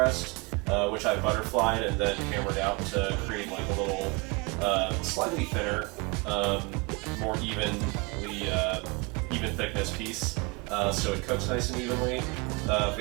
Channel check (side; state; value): left; quieter; 28.1 dB